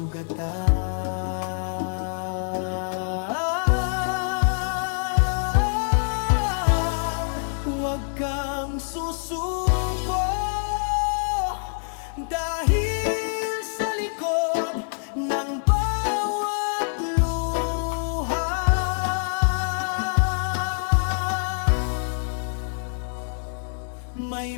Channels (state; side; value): silent; right; 55 dB below the other